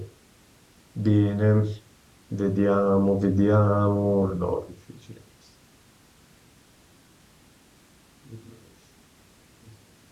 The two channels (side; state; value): both; identical; correlation 1.00